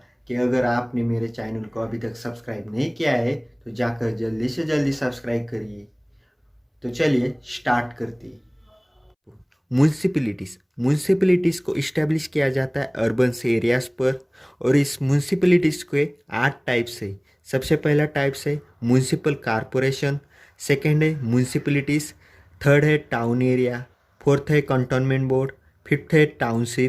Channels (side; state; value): both; identical; correlation 1.00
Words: कि अगर आपने मेरे चैनल को अभी तक सब्सक्राइब नहीं किया है तो जाकर जल्दी से जल्दी सब्सक्राइब करिए। तो चलिए स्टार्ट करते हैं। म्यूनिसिपैलिटीज़ म्यूनिसिपैलिटीज़ को इस्टेब्लिश किया जाता है अर्बन एरियाज़ पर। और इस म्यूनिसिपैलिटीज़ के 8 टाइप्स है। सबसे पहला टाइप्स है म्यूनिसिपल कॉरपोरेशन, सेकंड है म्यूनिसिपैलिटीज़, थर्ड है टाउन एरिया, फोर्थ है कंटोनमेंट बोर्ड, फिफ्थ है